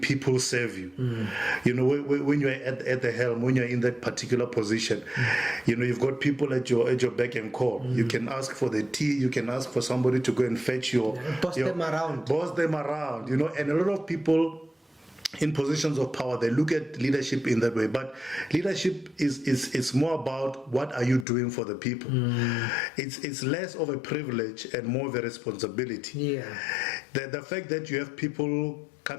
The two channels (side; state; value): right; drops out; at 21.2 s